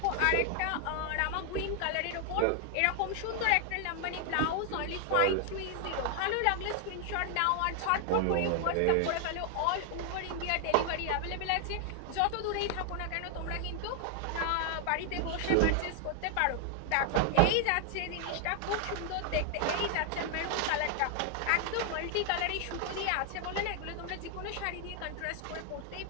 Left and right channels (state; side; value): different; both; correlation 0.00